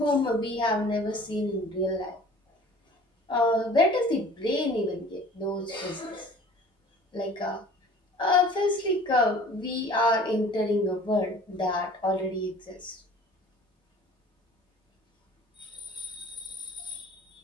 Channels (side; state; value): both; normal; correlation 0.47